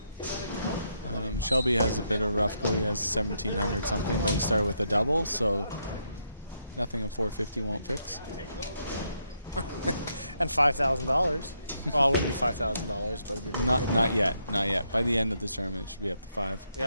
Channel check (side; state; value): both; inverted; correlation -0.78